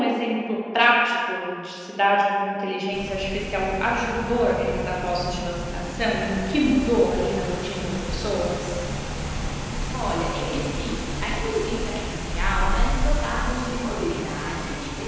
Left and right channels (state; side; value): identical; both; correlation 1.00